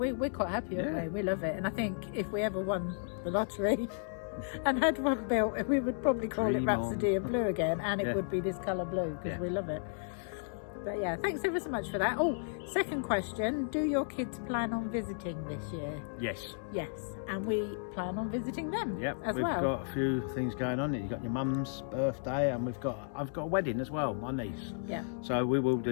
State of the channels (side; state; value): right; silent; digital silence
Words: quite happy, aren't we? We love it. And I think if we ever won the lottery and had one built, we would probably call it Rhapsody in Blue again, and it would be this colour blue because we love it. But yeah, thanks ever so much for that. Oh, second question, do your kids plan on visiting this year? Yes. Yes, and we plan on visiting them as we've well. got a few things going on. You've got your mum's birthday, and I've got a wedding as well, my niece. Yeah. So we'll